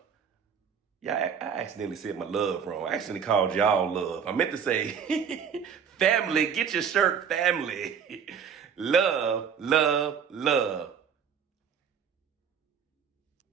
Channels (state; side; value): quieter; left; 7.3 dB